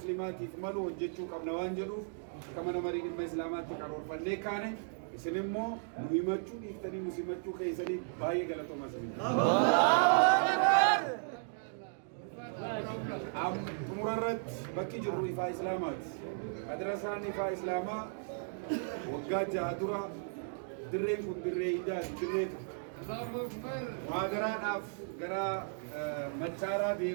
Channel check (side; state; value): left; silent; digital silence